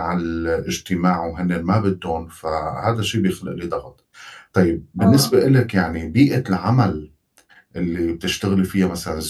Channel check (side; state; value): both; identical; correlation 1.00